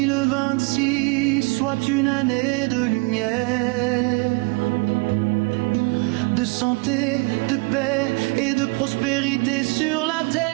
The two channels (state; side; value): quieter; left; 28.3 dB